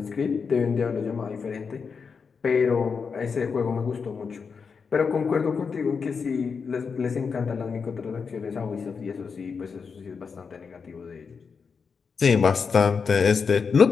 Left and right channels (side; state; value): right; quieter; 5.6 dB